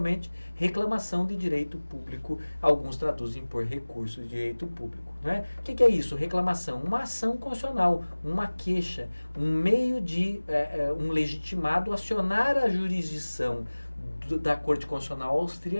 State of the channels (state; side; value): inverted; both; correlation -1.00